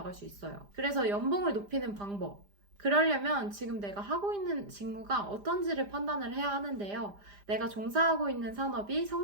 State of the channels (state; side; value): late; left; 5.0 ms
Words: 수 있어요. 그래서 연봉을 높이는 방법. 그러려면 지금 내가 하고 있는 직무가 어떤지를 판단을 해야 하는데요. 내가 종사하고 있는 산업이